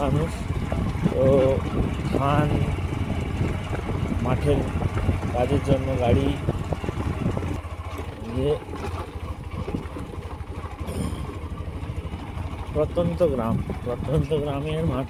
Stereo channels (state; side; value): identical; both; correlation 1.00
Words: মানুষ, তো ধান মাঠের কাজের জন্য গাড়ি ইয়ে। প্রত্যন্ত গ্রামের